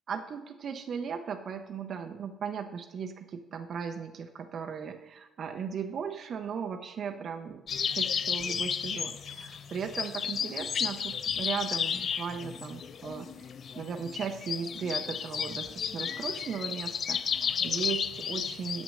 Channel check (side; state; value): both; normal; correlation 0.70